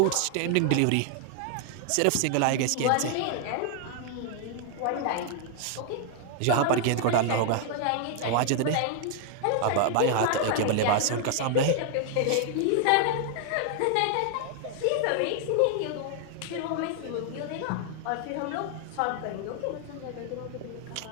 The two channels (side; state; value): both; different; correlation 0.00